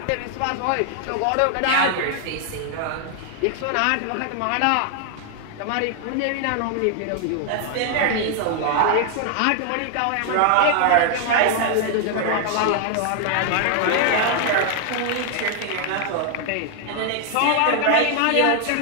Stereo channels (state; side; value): different; both; correlation 0.00